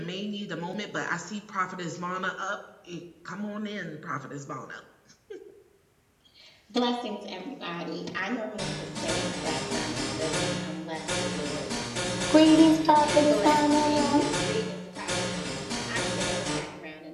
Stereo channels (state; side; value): identical; both; correlation 1.00